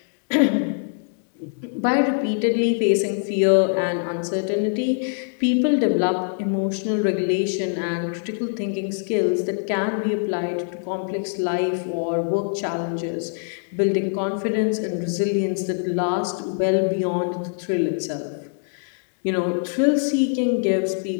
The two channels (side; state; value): right; silent; digital silence